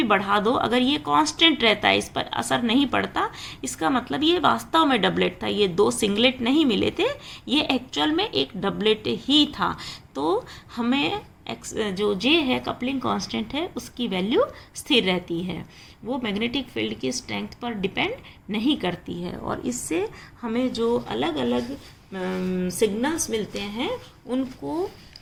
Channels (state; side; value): identical; both; correlation 1.00